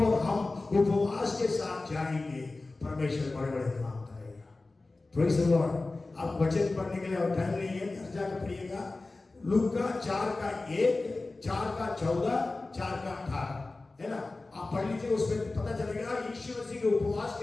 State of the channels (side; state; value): right; quieter; 3.3 dB